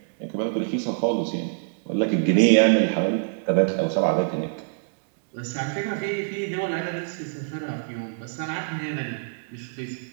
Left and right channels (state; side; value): silent; left; 62 dB below the other